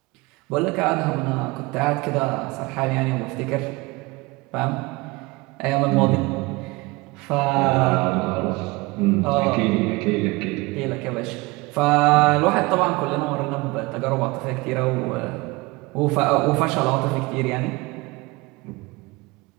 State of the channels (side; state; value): left; quieter; 23.2 dB